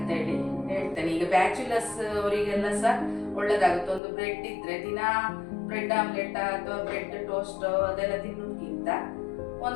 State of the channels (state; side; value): drops out; right; at 4.0 s